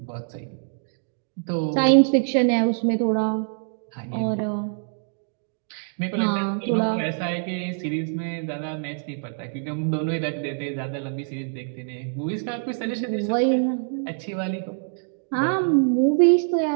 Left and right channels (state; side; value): silent; left; digital silence